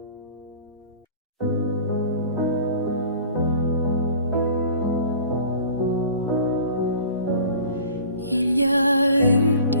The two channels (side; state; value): both; inverted; correlation -0.44